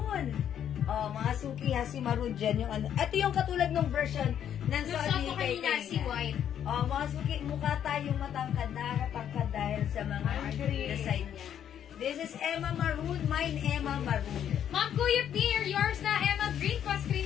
Oh, mga suki ha, si Maroon dyan yung ano. Ito yung katulad ng version ng Gusto ko kanina si White. Oh, mga suki, mukha tayong matangkad, nakakatangkad dahil sa mga design niya. This is Emma Maroon, mine Emma Maroon. Ma'am Kuya Pierre, yours na Emma Green,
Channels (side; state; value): right; quieter; 9.6 dB